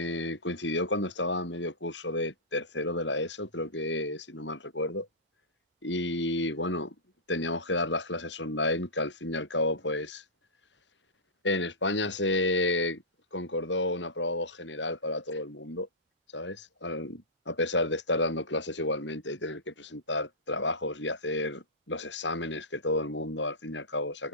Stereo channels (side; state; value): both; normal; correlation -0.19